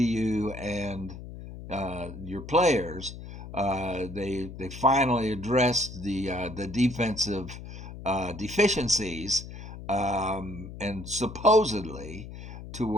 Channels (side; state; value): left; noise; hum, 12 dB below the sound